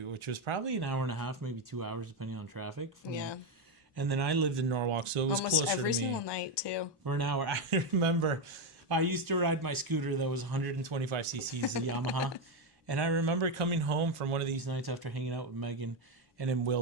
which was probably an hour and a half, maybe 2 hours, depending on traffic. And then I lived in Norwalk, so it was almost closer to me. Every single night, too. For an hour. I remember I used to ride my scooter that was 125 cc's, a Yamaha. And I remember coming home from one of these nights after hanging out with Megan and in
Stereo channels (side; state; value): both; normal; correlation 0.08